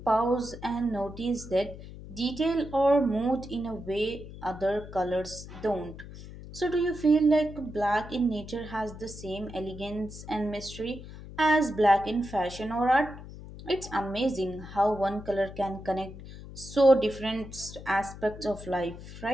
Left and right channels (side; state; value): left; noise; hum, 14 dB below the sound